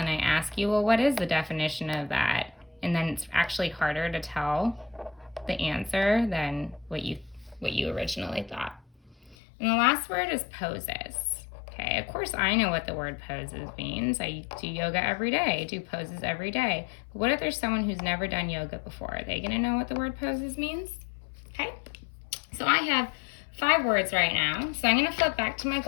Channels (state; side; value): drops out; right; at 9.3 s